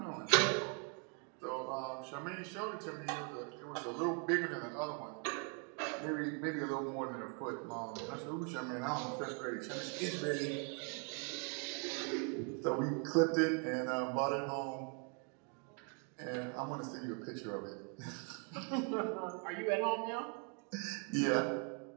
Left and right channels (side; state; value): left; quieter; 38.8 dB